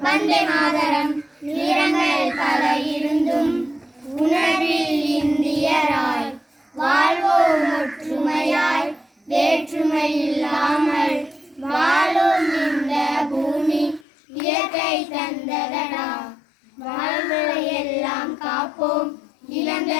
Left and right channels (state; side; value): drops out; right; at 14.1 s